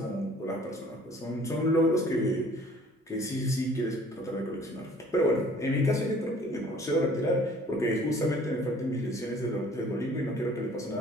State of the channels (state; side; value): normal; both; correlation 0.54